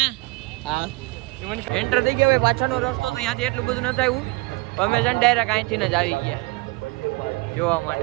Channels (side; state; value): left; quieter; 25.1 dB